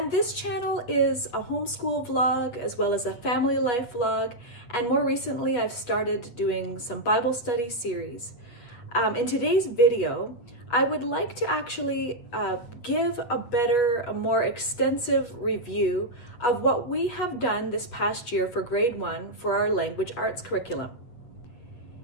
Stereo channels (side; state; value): right; late; 8.2 ms